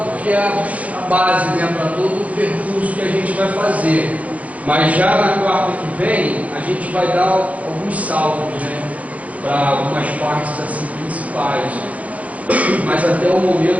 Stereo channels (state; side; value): late; left; 0.068 ms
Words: porque é a base, né, para todo o percurso que a gente vai fazer. Mas já na quarta que vem, a gente vai dar alguns saltos, né, para algumas partes assim principais. Mas até o